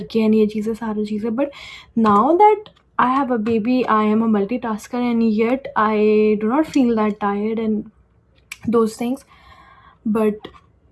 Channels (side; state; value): both; identical; correlation 1.00